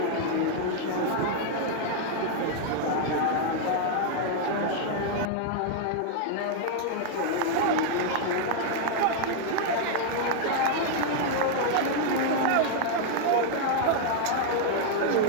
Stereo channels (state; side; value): different; both; correlation 0.00